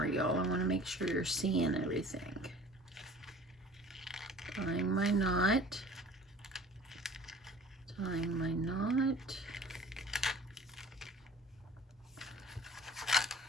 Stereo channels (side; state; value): both; normal; correlation 0.46